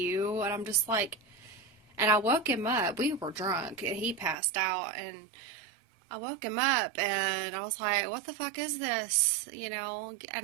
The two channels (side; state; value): left; drops out; at 4.4 s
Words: And I'm just like, and I woke him up. We were drunk, and he passed out, and I woke him up, and I was like, what the fuck is this?